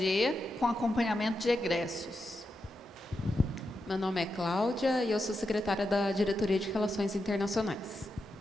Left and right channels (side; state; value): both; normal; correlation 0.87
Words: com acompanhamento de egressos. Meu nome é Cláudia e eu sou secretária da Diretoria de Relações Internacionais.